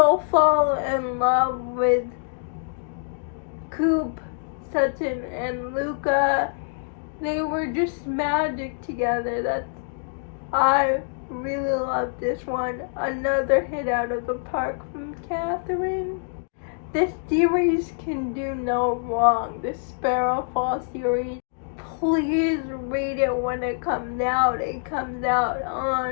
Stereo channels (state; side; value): silent; right; digital silence